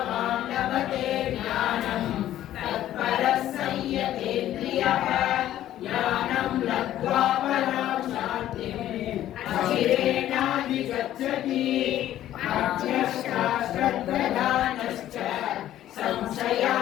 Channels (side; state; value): right; quieter; 12.7 dB